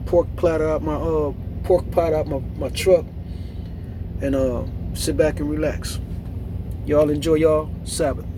pork platter out my truck and sit back and relax. Y'all enjoy y'all Sabbath.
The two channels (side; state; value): both; identical; correlation 1.00